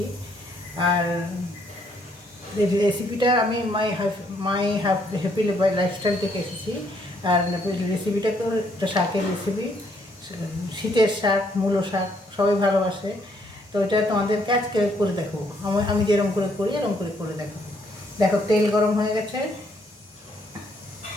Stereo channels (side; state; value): both; normal; correlation 0.69